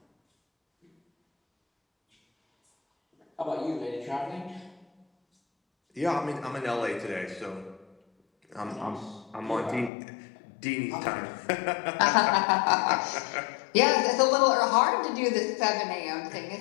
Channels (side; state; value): right; drops out; at 9.9 s